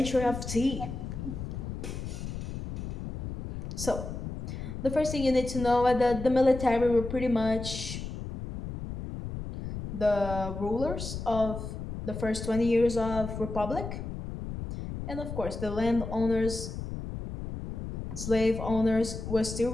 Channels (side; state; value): left; noise; rumble, 7 dB below the sound